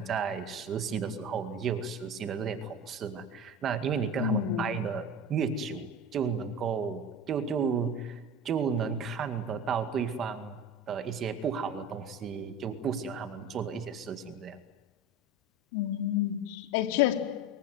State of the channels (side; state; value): both; normal; correlation 0.32